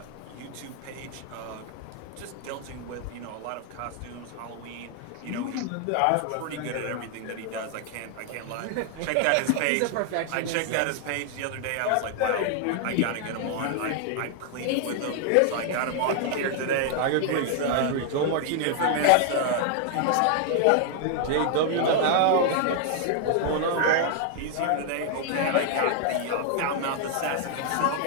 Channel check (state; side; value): different; both; correlation 0.00